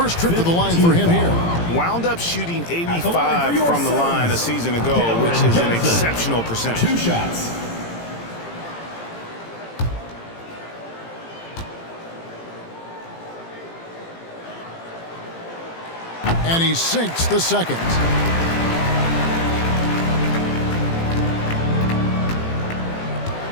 trip to the line for him here. Wound up shooting 85 from the line a season ago, which is an exceptional percentage. 2 shots. And he sinks the second.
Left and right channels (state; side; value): late; right; 18 ms